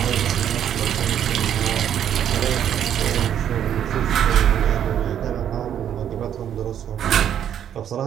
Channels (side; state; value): left; quieter; 9.7 dB